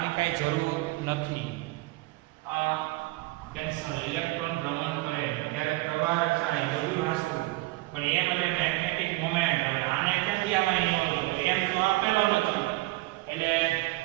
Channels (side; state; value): left; quieter; 20.9 dB